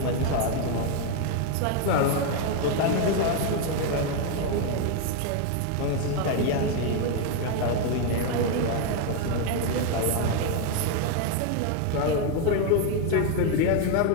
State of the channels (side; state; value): both; different; correlation 0.01